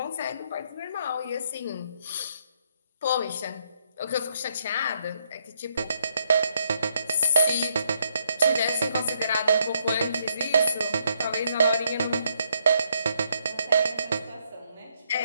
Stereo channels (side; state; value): both; inverted; correlation -0.73